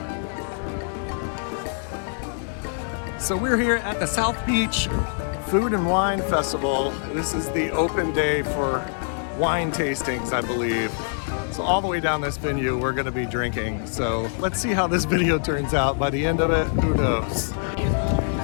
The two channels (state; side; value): silent; right; digital silence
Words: So we're here at the South Beach Food and Wine Festival. This is the open day for wine tastings, I believe. So all the way down this venue, we're gonna be drinking. So let's see how this video turns out. By the end of it, who knows?